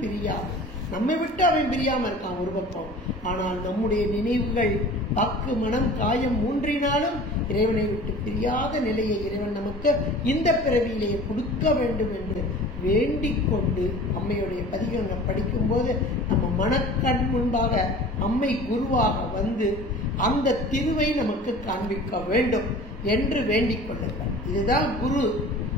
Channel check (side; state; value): both; normal; correlation 0.42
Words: பிரியாது, நம்மை விட்டு அவன் பிரியாம இருக்கான் ஒரு பக்கம், ஆனால் நம்முடைய நினைவுகள் வாக்கு மனம் காயம் மூன்றினாலும் இறைவனை விட்டு பிரியாத நிலையை இறைவன் நமக்கு இந்த பிறவியிலேயே கொடுக்க வேண்டும் என்று வேண்டிக் கொண்டு அம்மையுடைய பதிகங்களை படிக்கும் போது நம்ம மனக்கண் முன்பாக அம்மை குருவாக வந்து அந்த திருவை நமக்கு காண்பிக்க வேண்டும் என்று வேண்டிக் கொள்ளுங்கள். இதுதான் குரு.